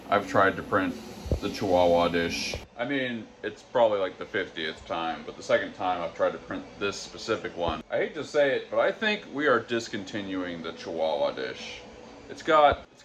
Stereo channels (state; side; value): identical; both; correlation 1.00